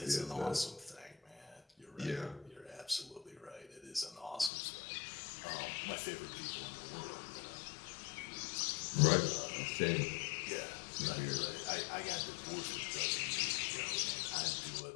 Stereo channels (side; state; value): right; drops out; at 4.5 s